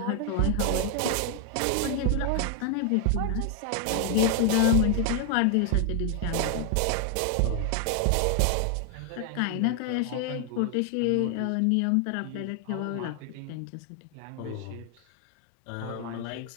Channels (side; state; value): both; different; correlation 0.00